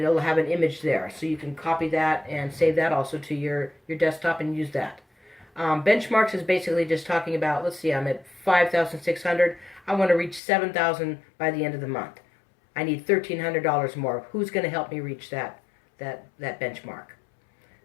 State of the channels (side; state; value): right; drops out; at 10.4 s